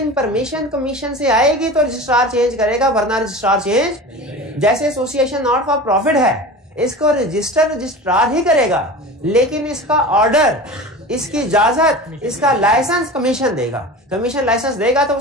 परमिशन कमीशन से आएगी तो रजिस्ट्रार चेंज करेगा, वरना रजिस्ट्रार चेंज। जैसे एसोसिएशन नॉट फॉर प्रॉफिट है, इसको रजिस्ट्रार ही करेगा, लेकिन इसका ऑर्डर, इसकी इजाजत, इसका लाइसेंस कमीशन देगा। कमीशन लाइसेंस देगा तो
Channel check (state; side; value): normal; both; correlation 0.33